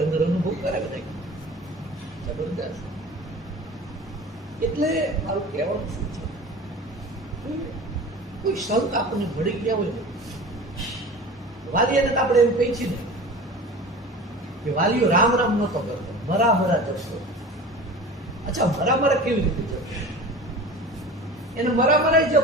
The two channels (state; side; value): normal; both; correlation 0.37